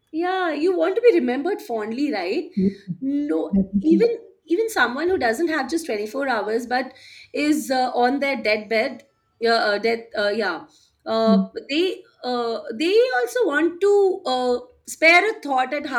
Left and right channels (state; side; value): identical; both; correlation 1.00